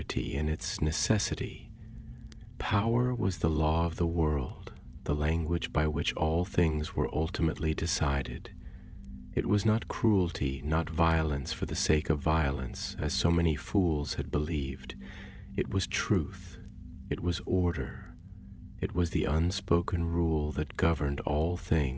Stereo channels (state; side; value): identical; both; correlation 1.00